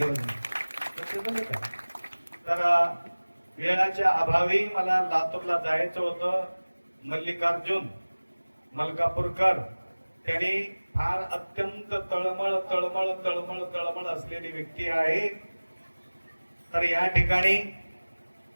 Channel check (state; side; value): inverted; both; correlation -1.00